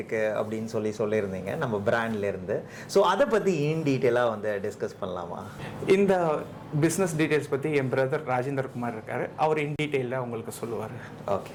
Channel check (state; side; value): identical; both; correlation 1.00